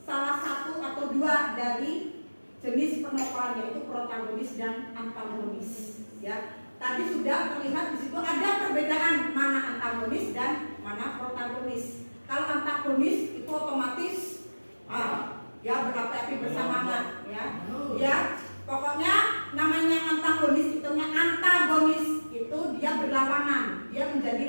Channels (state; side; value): inverted; both; correlation -1.00